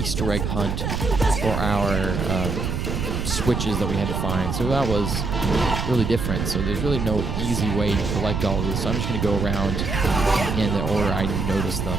egg hunt for our switches that we had to find, so that was really different. So there's really no easy way to collect all of these, so I'm just going to go around in the order I noticed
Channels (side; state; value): right; noise; rumble, 2 dB below the sound